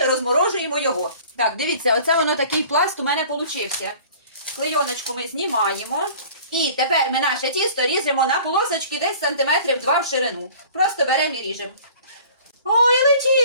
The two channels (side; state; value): both; inverted; correlation -0.47